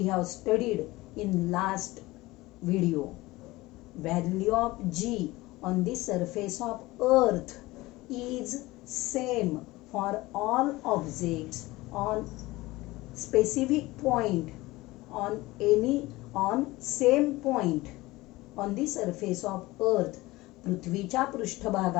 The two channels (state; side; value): quieter; right; 19.8 dB